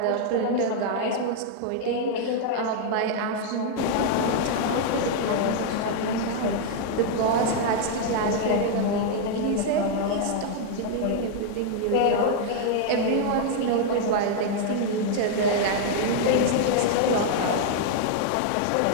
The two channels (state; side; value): different; both; correlation 0.00